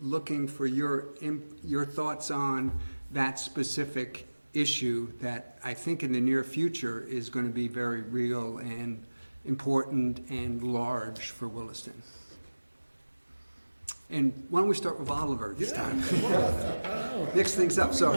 looking for your thoughts on that specific issue that I think in the near future is going to be very real and important and large for Williston. And why don't we start with Oliver this time? Mix things up, so.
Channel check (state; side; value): inverted; both; correlation -1.00